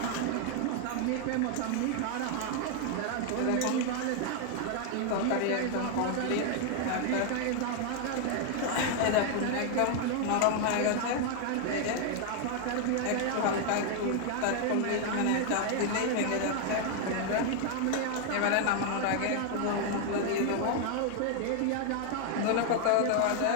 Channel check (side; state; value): both; different; correlation 0.00